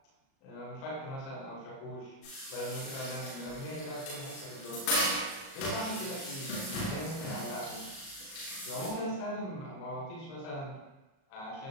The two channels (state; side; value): late; right; 37 ms